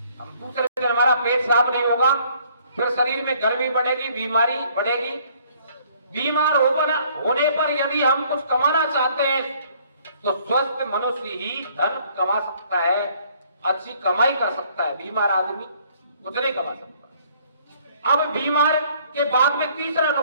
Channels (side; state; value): both; inverted; correlation -0.61